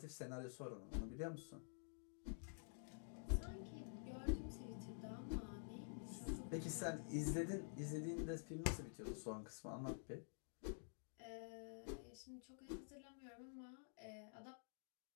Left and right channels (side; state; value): right; silent; digital silence